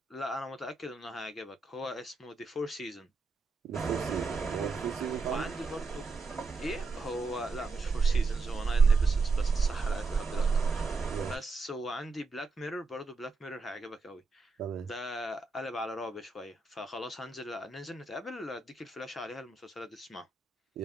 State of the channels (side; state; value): left; quieter; 4.0 dB